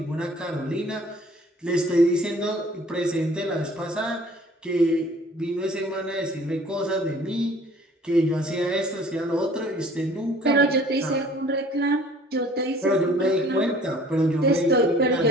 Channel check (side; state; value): both; normal; correlation 0.52